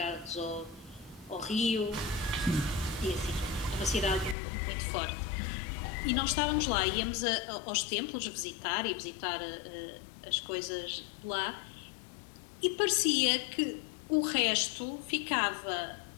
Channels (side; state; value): right; drops out; at 4.4 s